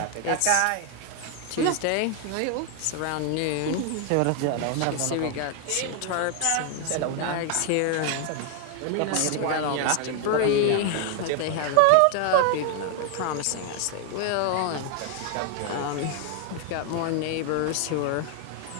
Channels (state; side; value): different; both; correlation 0.00